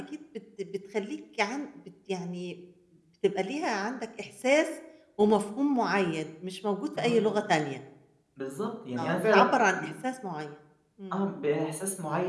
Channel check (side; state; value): both; identical; correlation 1.00